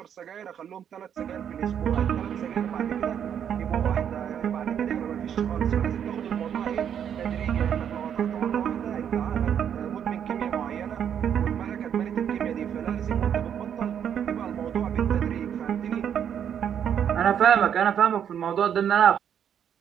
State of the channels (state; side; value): quieter; left; 8.8 dB